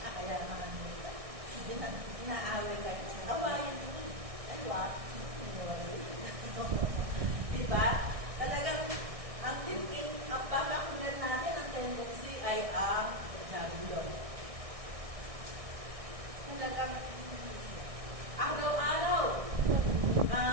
Kaya naman ang nito. Inaaway kayo sa awayin mo. Ay, what? Diba? Talagang ang papakunan natin ang tendency ay ang Diablo. Talagang araw-araw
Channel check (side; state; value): left; late; 1.6 ms